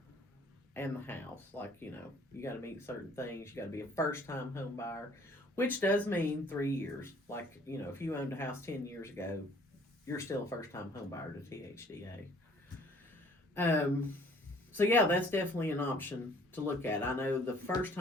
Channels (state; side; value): normal; both; correlation 0.57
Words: and the house. Like, you know, you got to meet certain things. You got to be a first time home buyer, which does mean 3 years. Like, you know, if you owned a house 10 years ago, you're still a first time home buyer to THDA. So yeah, that's definitely an option to look at. I know the first